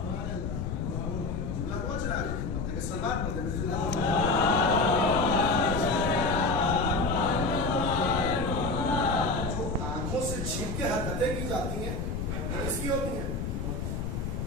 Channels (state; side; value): noise; left; rumble, 3 dB below the sound